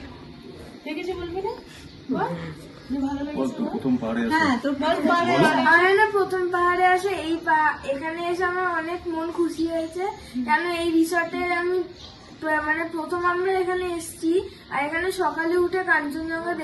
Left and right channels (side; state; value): both; identical; correlation 1.00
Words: কিছু বলবি না? বল, যে ভালো লেগেছে। প্রথম পাহাড়ে হ্যাঁ, তোর বল। আমার না প্রথম পাহাড়ে আসে এখানে এসে আমার অনেক মন খুশি হয়েছে, কেন এই রিসর্টের আমি মানে প্রথম আমরা এখানে এসেছি, আর এখানে সকালে উঠে কাঞ্চনজঙ্ঘা